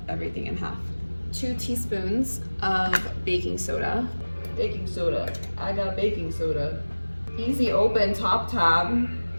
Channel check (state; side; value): inverted; both; correlation -1.00